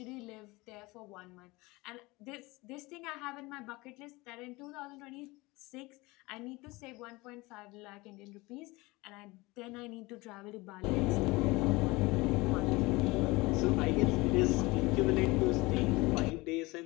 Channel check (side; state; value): right; quieter; 22.6 dB